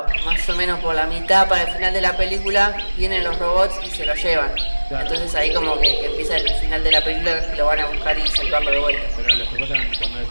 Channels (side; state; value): both; inverted; correlation -1.00